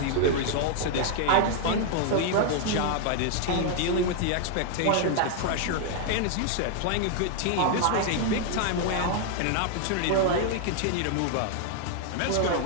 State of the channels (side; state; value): both; different; correlation 0.00